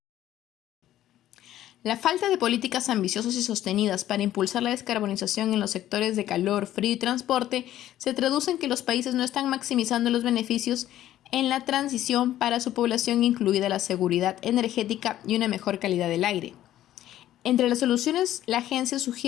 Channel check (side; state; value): right; quieter; 13.0 dB